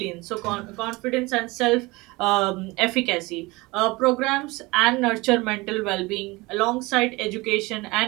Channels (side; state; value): left; quieter; 22.9 dB